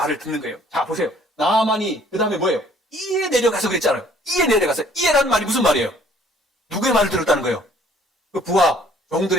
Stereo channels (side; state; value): both; normal; correlation 0.58